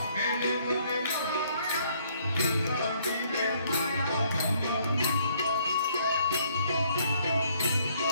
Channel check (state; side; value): inverted; both; correlation -0.65